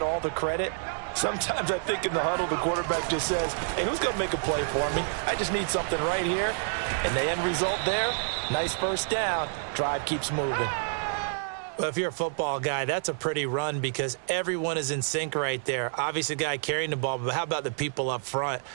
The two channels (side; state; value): left; silent; 59 dB below the other